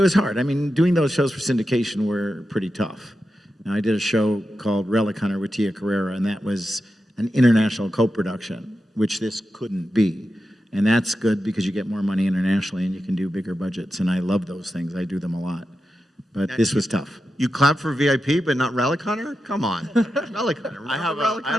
hard. I mean, doing those shows for syndication were pretty tough. Now, I did a show called Relic Hunter with Tia Carrera, and that was an international co-production, which this couldn't be. And that's good because you get more money internationally and you can do bigger budgets. And I love those things. I do them a lot. But this was tough. You clap for VIP, but not Relic Hunter? Come on. Relic Hunter. I have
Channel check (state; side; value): normal; both; correlation 0.90